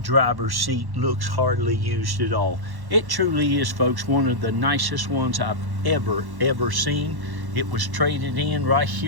driver's seat looks hardly used at all. It truly is, folks, one of the nicest ones I've ever seen. It was traded in right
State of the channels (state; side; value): late; left; 1.1 ms